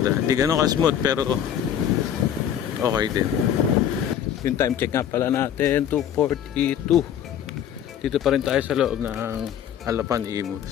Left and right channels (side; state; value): right; quieter; 9.6 dB